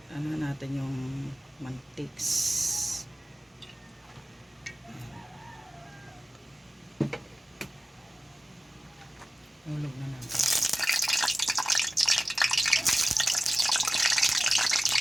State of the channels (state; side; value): normal; both; correlation 0.96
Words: Ano natin yung mantiks. Hulog na natin.